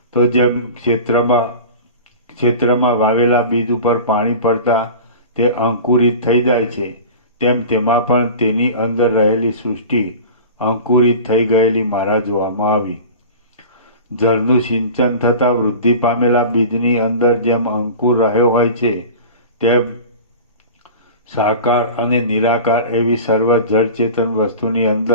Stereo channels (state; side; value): inverted; both; correlation -0.36